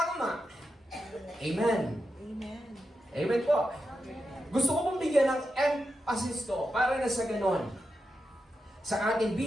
Amen. Amen. Amen po. Gusto ko pong bigyan ng emphasis to para na sa ganon. Sa atin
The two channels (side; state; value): both; normal; correlation 0.88